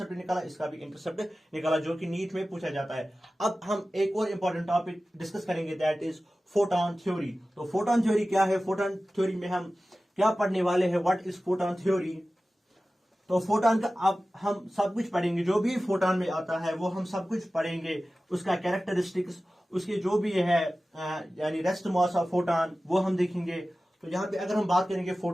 निकाला, इसका भी इंटरसेप्ट निकाला, जो कि नीट में पूछा जाता है। अब हम एक और इंपॉर्टेंट टॉपिक डिस्कस करेंगे दैट इज फोटॉन थ्योरी। तो फोटॉन थ्योरी क्या है, फोटॉन थ्योरी में हम क्या पढ़ने वाले हैं, व्हाट इज फोटॉन थ्योरी। तो फोटॉन का अब हम सब कुछ पढ़ेंगे, जो भी फोटॉन में आता है वो हम सब कुछ पढ़ेंगे, उसका कैरेक्टरिस्टिक्स, उसके जो भी है यानी रेस्ट मास ऑफ फोटॉन वो हम देखेंगे। तो यहाँ पे अगर हम बात करेंगे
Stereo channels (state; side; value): normal; both; correlation 0.96